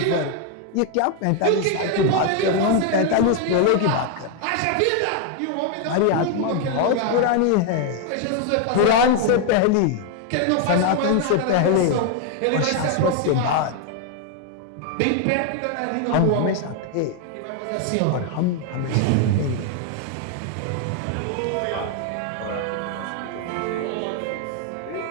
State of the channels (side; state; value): both; different; correlation 0.00